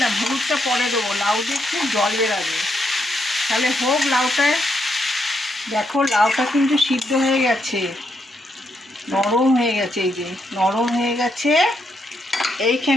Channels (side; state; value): both; normal; correlation 0.79